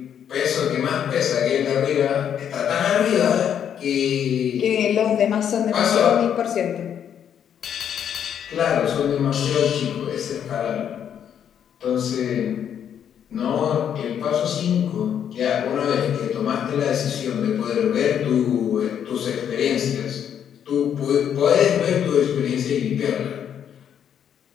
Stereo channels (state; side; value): quieter; right; 8.9 dB